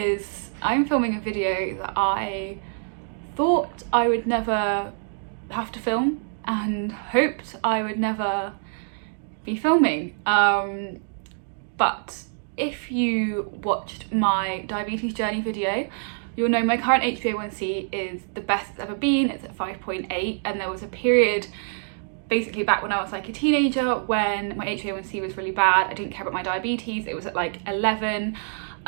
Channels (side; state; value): left; silent; digital silence